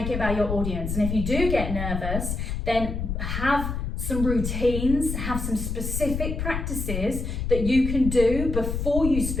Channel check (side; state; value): left; noise; rumble, 3 dB below the sound